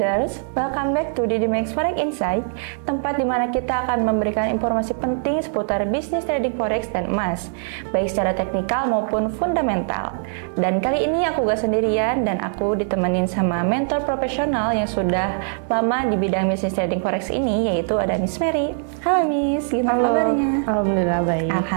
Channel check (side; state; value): left; silent; 60 dB below the other